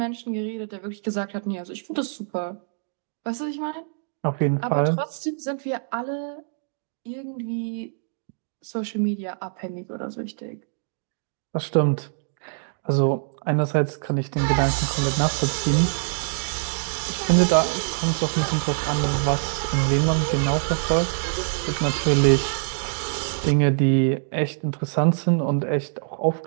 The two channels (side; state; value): left; silent; digital silence